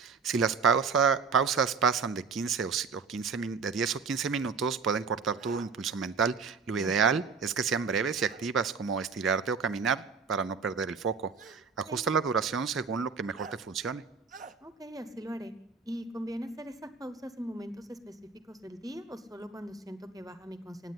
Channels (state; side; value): quieter; left; 5.3 dB